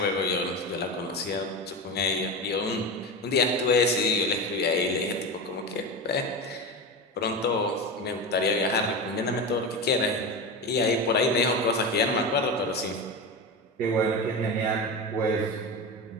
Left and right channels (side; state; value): both; normal; correlation 0.22